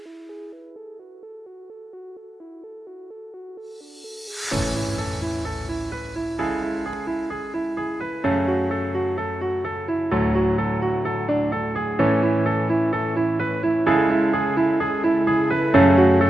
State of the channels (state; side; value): normal; both; correlation 0.90